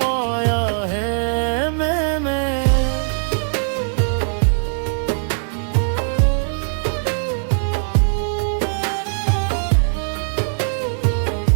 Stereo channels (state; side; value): silent; left; 66 dB below the other